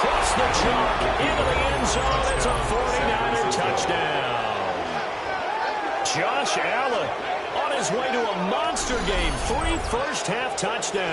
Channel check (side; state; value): both; identical; correlation 1.00